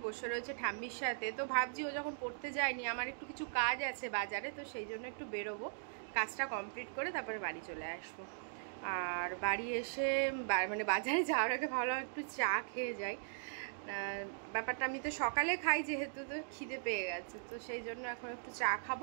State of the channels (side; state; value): left; silent; digital silence